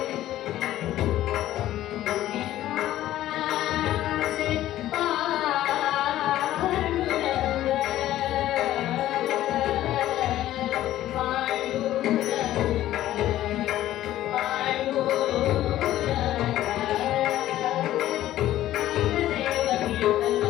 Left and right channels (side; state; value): right; quieter; 13.8 dB